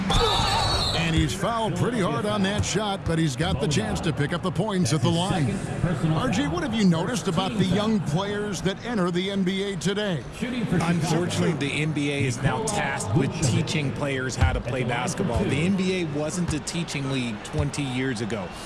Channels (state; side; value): identical; both; correlation 1.00